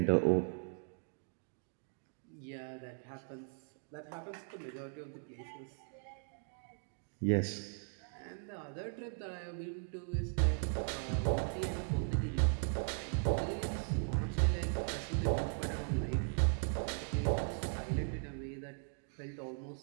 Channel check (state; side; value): silent; left; 52 dB below the other